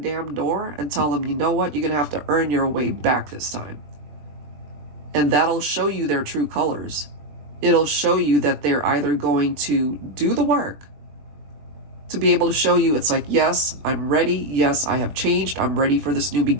door and tell them, you know what, you're going to have to earn your way back this time. And that'll show you their true colors. It'll show you that they're either going to do the work to be able to show you, it's like, yes, I'm ready. Yes, I have changed. I'm ready for this new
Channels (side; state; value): left; late; 21 ms